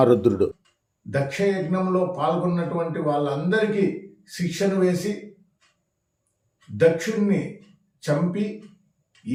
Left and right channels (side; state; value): both; identical; correlation 1.00